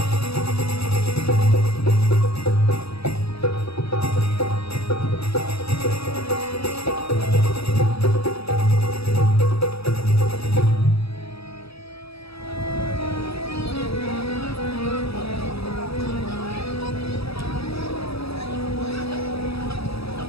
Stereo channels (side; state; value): right; late; 0.77 ms